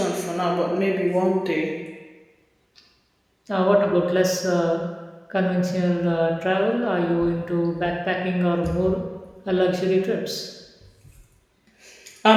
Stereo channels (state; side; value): identical; both; correlation 1.00